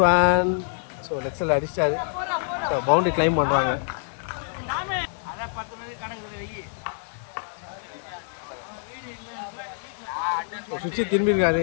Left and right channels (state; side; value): silent; right; 61 dB below the other